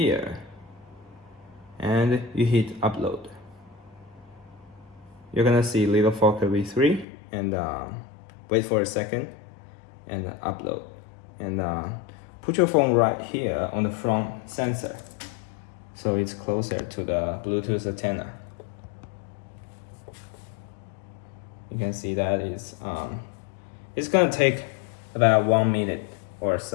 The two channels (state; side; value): drops out; right; at 7.1 s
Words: and you hit upload. You're gonna see little Fokker V3, and wait for a second, and upload. And put your phone right here on the front sensor, so it's closer to the Bluetooth antenna. You can see that it's gonna take about 1 minute or